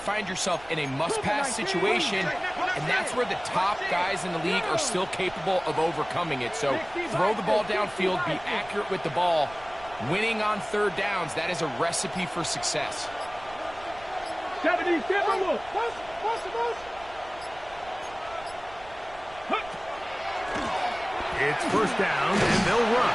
yourself in a must-pass situation, and that's where the top guys in the league are still capable of overcoming it. So throw the ball downfield, be accurate with the ball. Winning on 3rd downs, that is a recipe for success. 70 Timberwolves. It's 1st down, and they'll run.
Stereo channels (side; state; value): right; noise; rumble, 21 dB below the sound